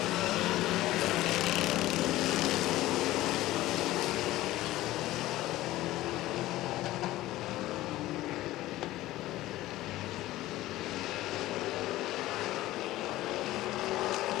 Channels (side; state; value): right; quieter; 16.3 dB